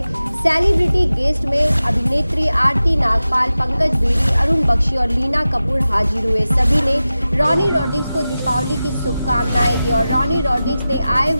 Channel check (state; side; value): inverted; both; correlation -0.95